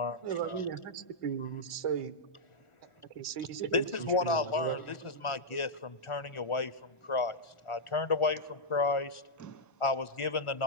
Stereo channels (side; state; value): right; late; 1.4 ms